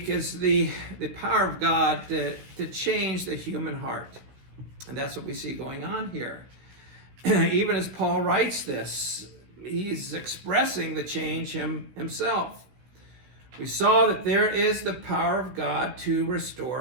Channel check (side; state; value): left; late; 16 ms